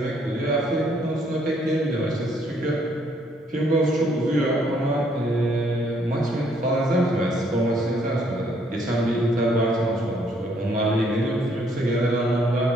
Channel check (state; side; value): normal; both; correlation 0.68